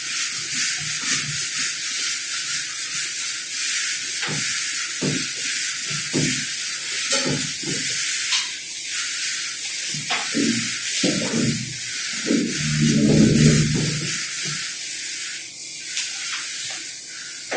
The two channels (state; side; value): identical; both; correlation 1.00